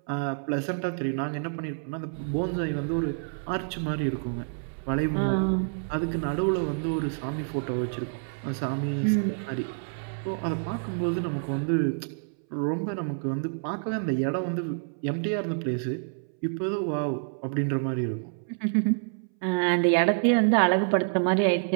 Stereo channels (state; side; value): silent; left; 59 dB below the other